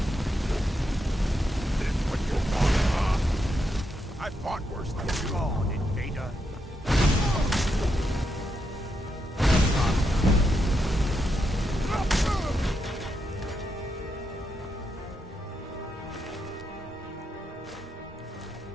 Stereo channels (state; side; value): normal; both; correlation 0.82